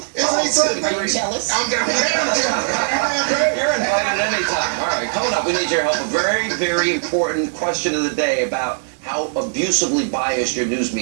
Isn't he something? Are you jealous? I'm jealous. You're invited anytime. All right, coming up, we need your help. A very, very important question of the day about how abusively biased your news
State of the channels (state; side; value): silent; left; 66 dB below the other